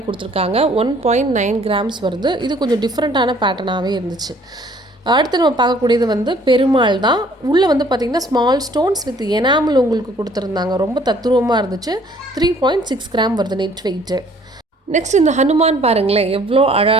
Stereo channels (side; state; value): both; normal; correlation 0.58